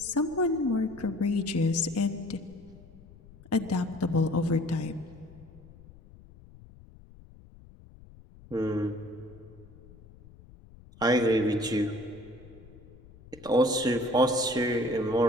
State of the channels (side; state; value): left; noise; rumble, 22 dB below the sound